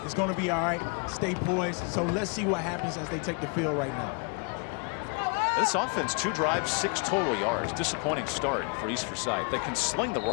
It's going to be all right. Stay poised. So let's see what happens as they take the field right now. This offense, 2 drives, 6 total yards. Disappointing start for East Forsyth. They can sling the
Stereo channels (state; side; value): quieter; right; 35.1 dB